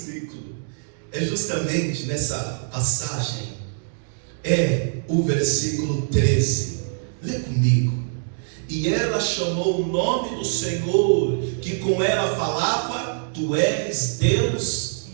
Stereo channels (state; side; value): silent; left; digital silence